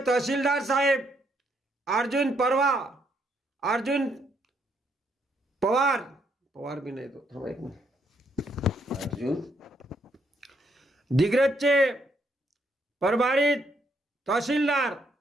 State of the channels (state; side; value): normal; both; correlation 0.73